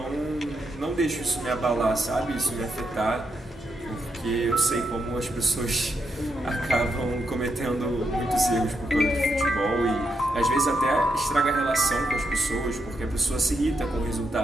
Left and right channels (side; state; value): both; normal; correlation 0.82